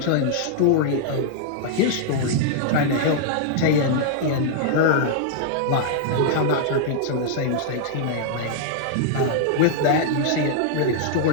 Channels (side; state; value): both; different; correlation -0.01